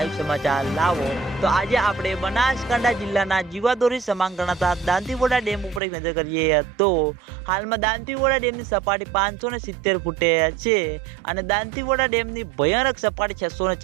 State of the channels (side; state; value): left; drops out; at 5.8 s